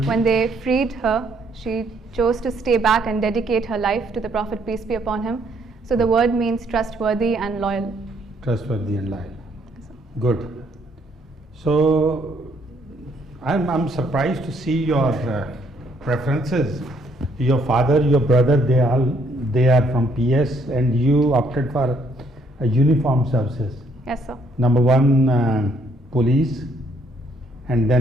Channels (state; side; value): normal; both; correlation 0.68